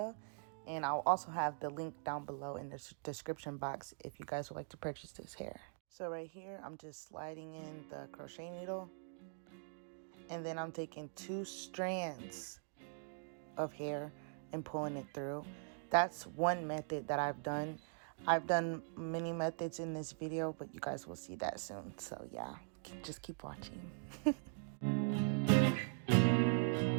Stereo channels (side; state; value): left; silent; digital silence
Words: And I'll also have the link down below in the description box if you guys would like to purchase this hair. So right here, I'm just sliding in the crochet needle. And then I'm taking 2 strands of hair and pulling it through. That's one method that I've done. I've done many methods in this video, but you guys will see that soon. So yeah, just keep watching.